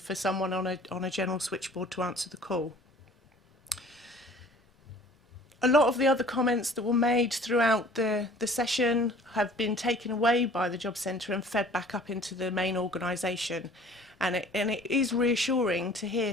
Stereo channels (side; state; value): both; normal; correlation 0.50